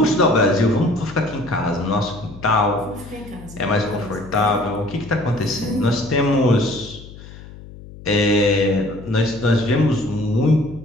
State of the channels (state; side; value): noise; left; hum, 17 dB below the sound